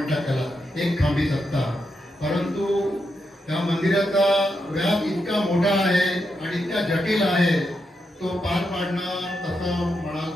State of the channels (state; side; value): normal; both; correlation 0.84